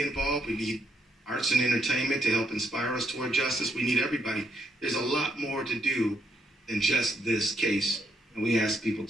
involved. We need arts and entertainment to help inspire us toward justice. We need everybody. There's a lot more to do than just this case, and we ask people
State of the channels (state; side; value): normal; both; correlation 0.75